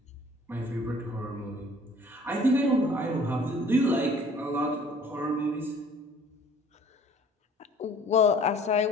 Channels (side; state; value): both; normal; correlation 0.52